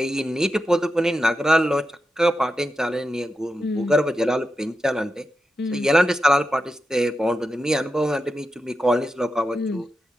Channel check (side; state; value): both; normal; correlation 0.89